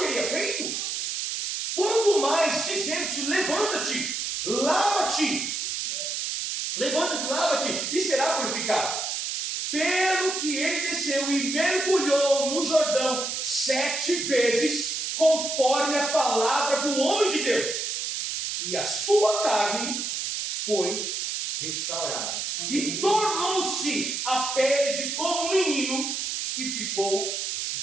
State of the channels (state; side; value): noise; right; hiss, 3 dB below the sound